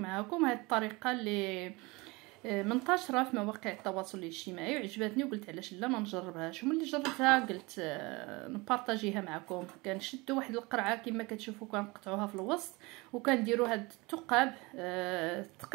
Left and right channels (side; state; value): left; quieter; 24.6 dB